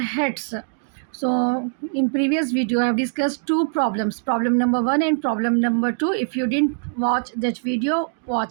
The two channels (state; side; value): silent; left; digital silence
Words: So in previous video I have discussed two problems, problem number 1 and problem number 2. If you didn't watch that video,